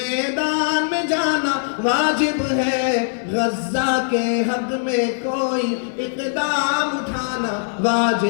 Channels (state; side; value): silent; right; 61 dB below the other